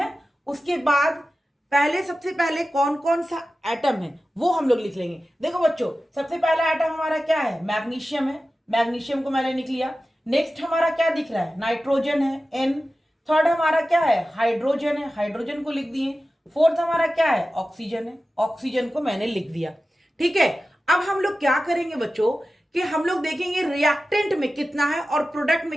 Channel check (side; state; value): both; normal; correlation 0.94